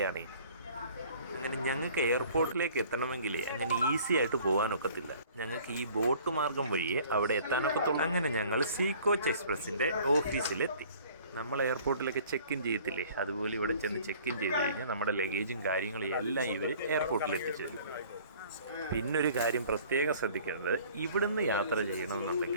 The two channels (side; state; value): both; inverted; correlation -0.52